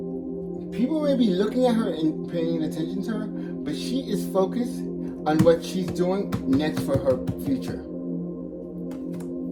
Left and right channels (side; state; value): both; identical; correlation 1.00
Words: people may be looking at her and paying attention to her, but she is focused on what she's doing next for her future.